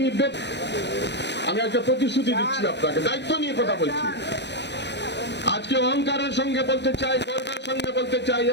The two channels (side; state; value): right; late; 0.50 ms